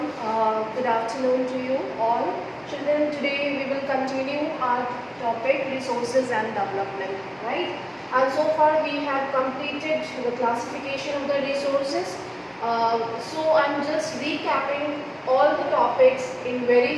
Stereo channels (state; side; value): identical; both; correlation 1.00